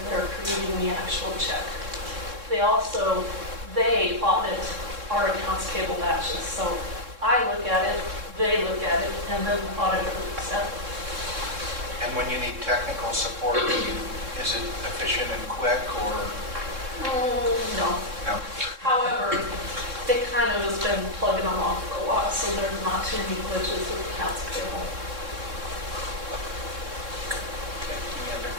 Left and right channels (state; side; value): late; left; 3.6 ms